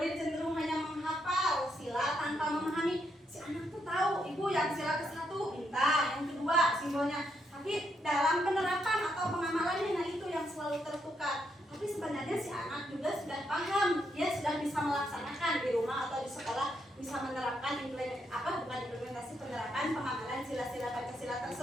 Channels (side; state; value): both; normal; correlation 0.78